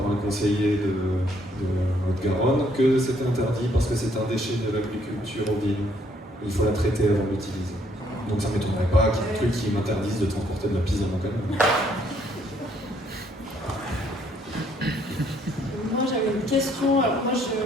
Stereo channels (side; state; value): both; normal; correlation 0.67